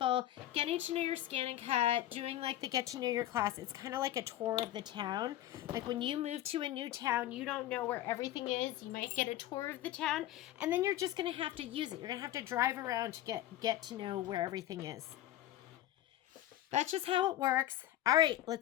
getting to know your scan and cut, doing like the get to know your class, it's kind of like a tour of the town. Like when you move to a new town, you don't know where everything is. You might get a tour of the town, and then you're just going to have to use it. You're going to have to drive around to get to know where everything is. That's just how it works. All right,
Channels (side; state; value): right; quieter; 13.6 dB